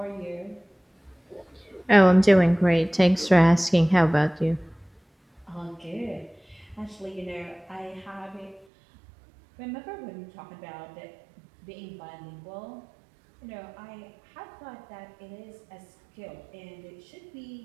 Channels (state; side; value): drops out; left; at 8.7 s